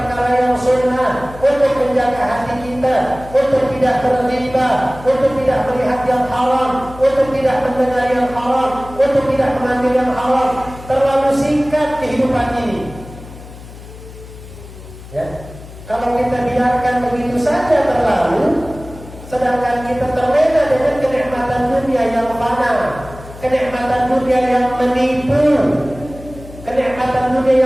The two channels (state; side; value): noise; left; hum, 16 dB below the sound